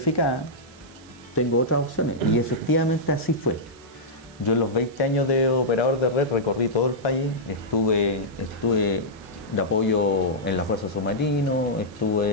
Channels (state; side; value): noise; right; hiss, 25 dB below the sound